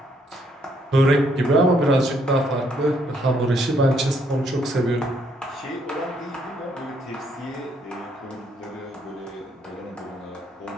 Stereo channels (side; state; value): both; normal; correlation 0.70